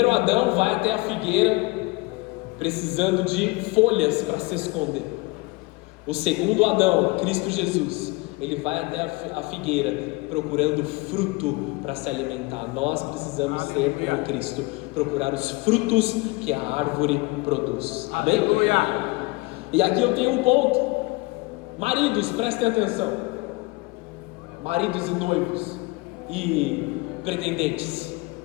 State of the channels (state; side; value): quieter; right; 24.3 dB